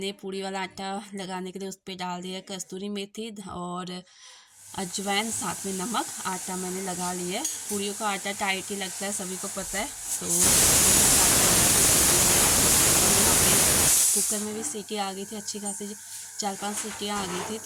पूड़ी वाला आटा लगाने के लिए उस पर डाल दिया कस्तूरी मेथी और अजवाइन, साथ में नमक। आटा मैंने लगा लिया है। पूड़ियों का आटा टाइट ही लगता है, सभी को पता है। तो यहाँ पे कुकर में भी सीटी आ गई थी अच्छी खासी, 4-5 सीटियाँ आ गई थी।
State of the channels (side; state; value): both; identical; correlation 1.00